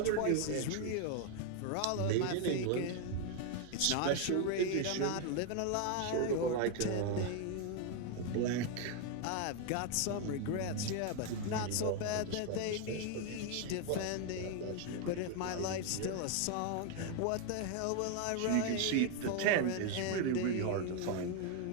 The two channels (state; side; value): different; both; correlation 0.01